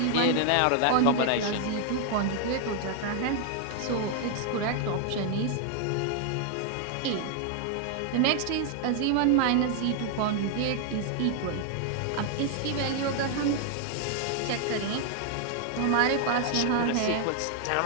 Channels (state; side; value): different; both; correlation 0.00